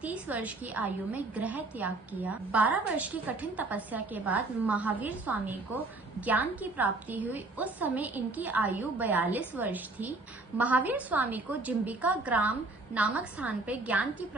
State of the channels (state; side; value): quieter; left; 3.2 dB